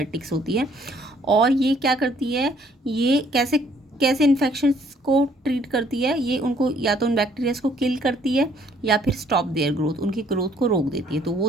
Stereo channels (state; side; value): normal; both; correlation 0.63